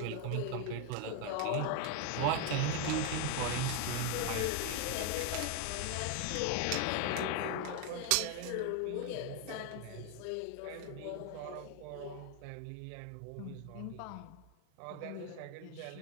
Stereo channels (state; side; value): different; both; correlation 0.01